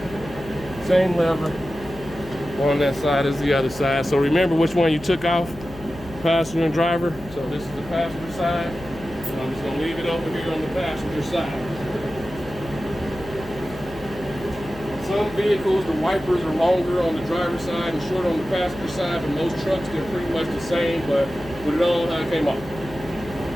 Same lever on that side as the other side. So remember which one you took off, passenger and driver. So this is the passenger side. So I'm just gonna leave it over here on the passenger side. Some vehicles, the wipers are longer on the driver's side and short on the passenger side, but most trucks, they're pretty much the same, but put it on how it came off.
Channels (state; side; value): noise; left; hum, 16 dB below the sound